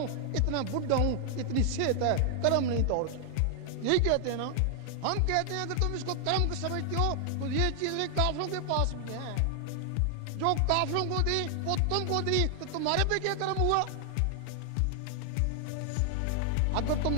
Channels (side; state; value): both; different; correlation 0.00